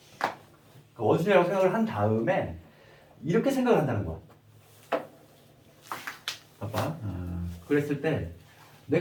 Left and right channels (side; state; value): both; identical; correlation 1.00